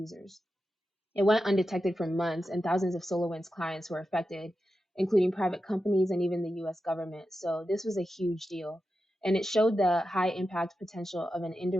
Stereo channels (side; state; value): both; normal; correlation 0.91